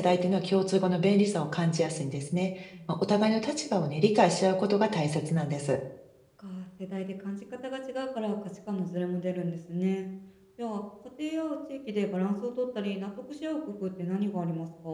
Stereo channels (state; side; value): identical; both; correlation 1.00